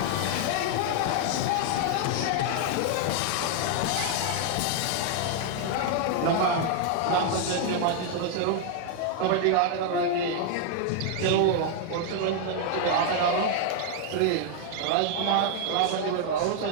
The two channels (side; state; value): both; different; correlation 0.00